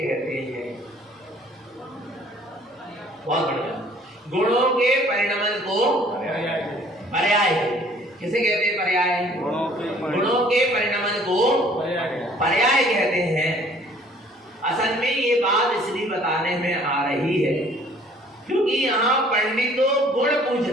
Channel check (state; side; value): normal; both; correlation 0.56